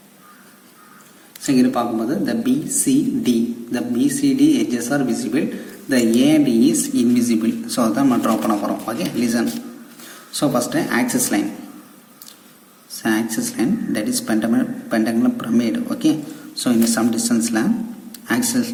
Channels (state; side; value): identical; both; correlation 1.00